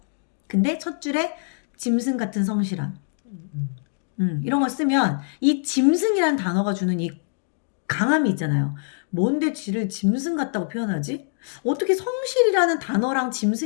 근데 첫 줄에 짐승 같은 성실함. 이런 거 쓰면 이 짐승이라는 단어가 주는 이 강함이 있잖아요. 뭔데 쥐를 짐승 같다고 표현하지? 어떻게 성실이라는 단어랑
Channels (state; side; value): silent; right; digital silence